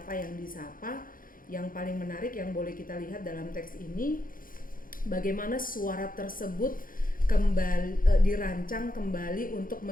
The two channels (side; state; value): right; late; 0.40 ms